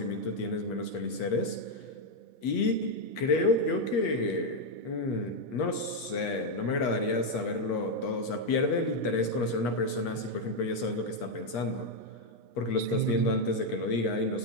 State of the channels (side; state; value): right; late; 8.3 ms